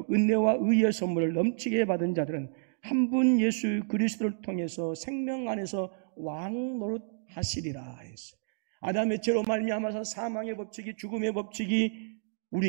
은혜와 의의 선물을 넘치게 받은 자들은 한 분 예수 그리스도를 통해서 생명 안에서 왕노릇하시리라 했어요. 아담의 죄로 말미암아서 사망의 법칙이, 죽음의 법칙이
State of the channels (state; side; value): silent; left; digital silence